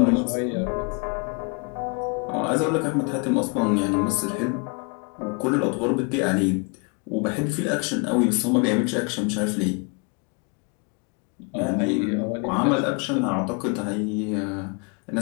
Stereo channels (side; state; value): right; quieter; 33.7 dB